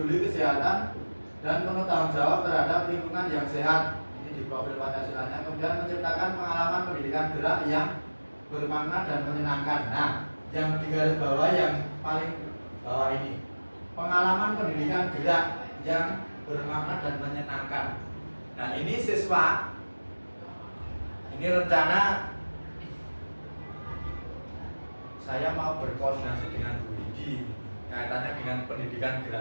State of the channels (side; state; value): both; inverted; correlation -1.00